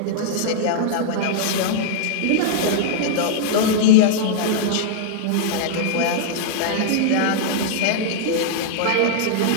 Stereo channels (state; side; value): different; both; correlation -0.01